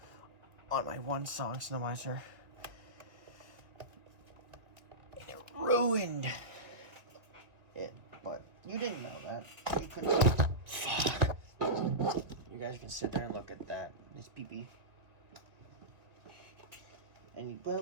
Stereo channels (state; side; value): late; left; 1.8 ms